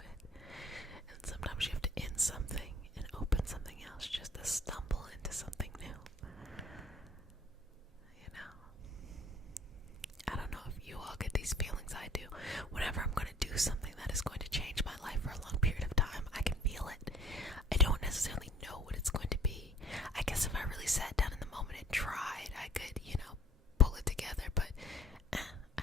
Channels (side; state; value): both; normal; correlation 0.53